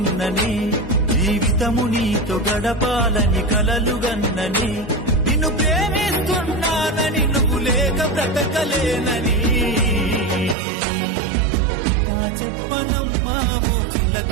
జీవితము నీతో గడపాలని కలలుగన్నని. నిన్ను ప్రేమిస్తున్నానని, నువ్వు లేక బ్రతకలేనని. నా చెప్పనమ్మా ఓ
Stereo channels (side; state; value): left; drops out; at 10.6 s